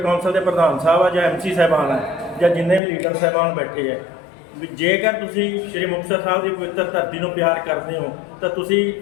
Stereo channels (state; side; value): drops out; right; at 2.8 s